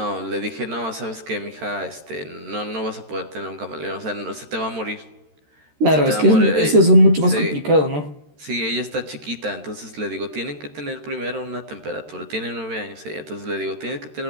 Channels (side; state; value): left; late; 13 ms